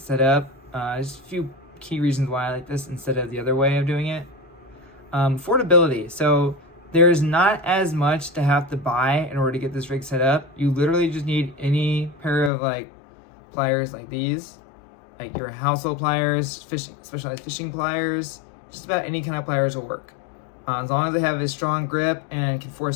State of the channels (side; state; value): right; drops out; at 12.5 s